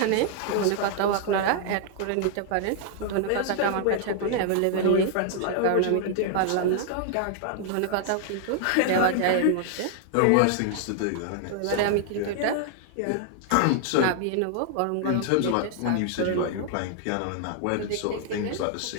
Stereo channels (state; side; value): different; both; correlation 0.00